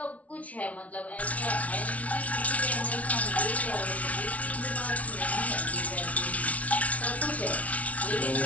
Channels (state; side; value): late; right; 0.067 ms